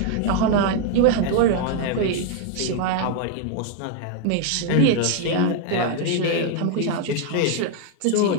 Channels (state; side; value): different; both; correlation 0.00